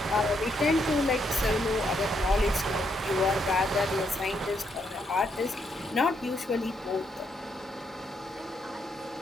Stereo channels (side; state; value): both; normal; correlation 0.76